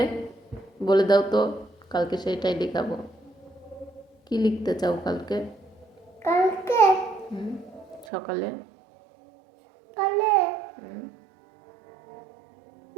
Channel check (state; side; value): drops out; left; at 8.1 s